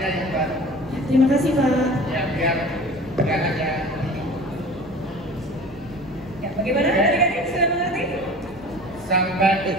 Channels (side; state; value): right; noise; rumble, 24 dB below the sound